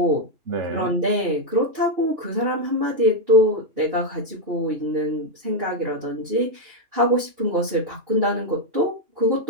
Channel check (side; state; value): left; late; 3.0 ms